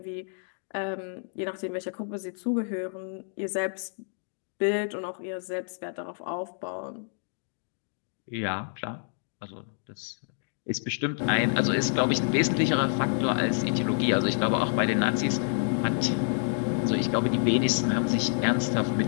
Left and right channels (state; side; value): silent; right; digital silence